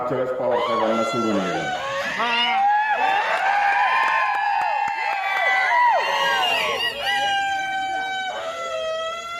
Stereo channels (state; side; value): identical; both; correlation 1.00